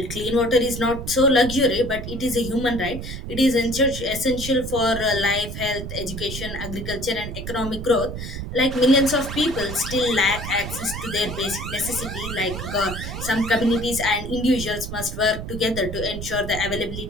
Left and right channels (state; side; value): noise; right; rumble, 7 dB below the sound